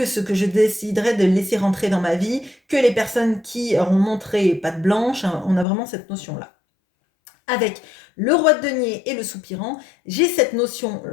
ce que je déciderai de laisser rentrer dans ma vie, que les personnes qui auront montré patte blanche, hein, on a vraiment cette notion-là. Avec le roi de denier et le soupirant, j'ai cette notion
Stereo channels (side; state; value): right; drops out; at 5.7 s